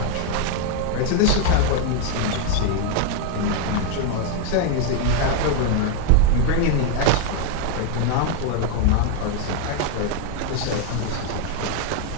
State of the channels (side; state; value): both; different; correlation 0.01